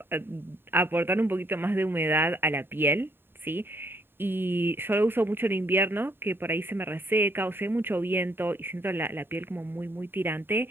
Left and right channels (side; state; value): left; late; 0.10 ms